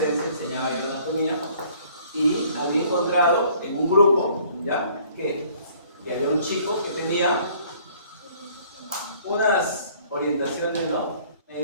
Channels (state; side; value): inverted; both; correlation -0.58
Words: enseñaba yo anatomía, y había encontrado en un grupo, ¿ya? Que había un chico que tenía unas orientaciones, ¿no?